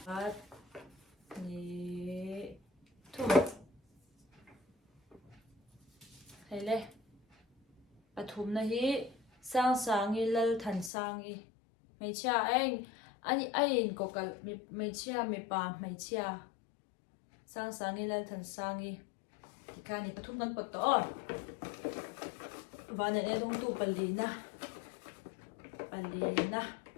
at ni thu hele pathum na hi sang sangi lal than sangi mai cha ani ain kokal mai cha mi pa mai cha sang sangi lal than sangi tikani pathum kan pot to vane ne dong tu palina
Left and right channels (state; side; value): drops out; right; at 10.9 s